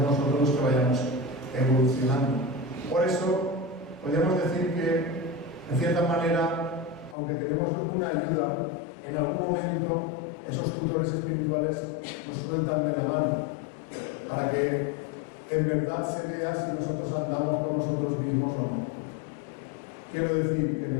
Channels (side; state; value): right; drops out; at 7.2 s